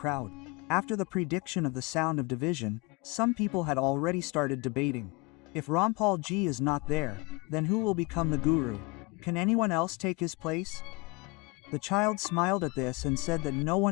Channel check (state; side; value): quieter; right; 26.3 dB